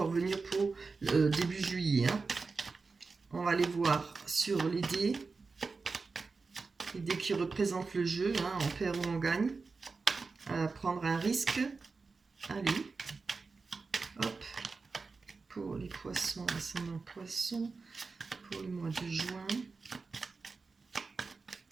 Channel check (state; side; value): quieter; left; 4.3 dB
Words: venir pour début juillet, hein. On va aller voir sur les dés qui représentent le jeu, hein, on perd ou on gagne. Prendre un risque. Allez, hop, pour les poissons, ascendant poisson, pour le mois de juin,